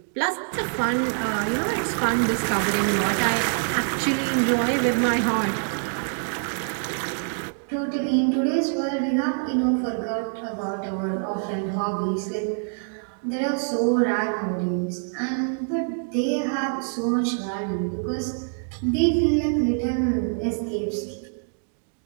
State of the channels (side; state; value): left; silent; 62 dB below the other